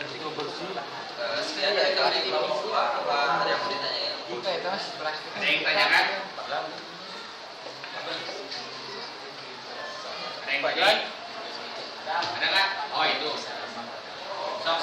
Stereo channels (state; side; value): identical; both; correlation 1.00